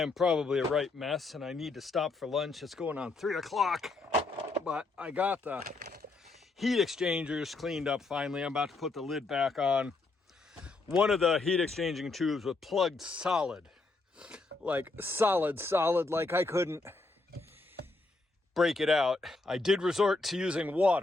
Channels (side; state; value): right; quieter; 3.4 dB